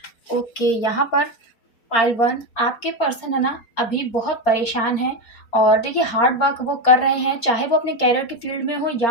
ओके, यहाँ पर पाइल 1 आपके पर्सन है ना अभी बहुत परेशान है और देखिए हार्ड वर्क वो कर रहे हैं, चाहे वो अपने कैरियर की फील्ड में हो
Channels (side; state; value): right; late; 4.3 ms